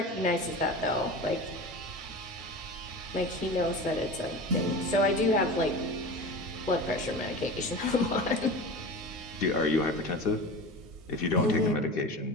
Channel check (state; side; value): normal; both; correlation 0.32